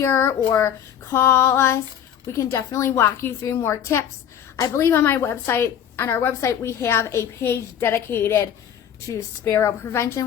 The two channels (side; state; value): right; quieter; 9.4 dB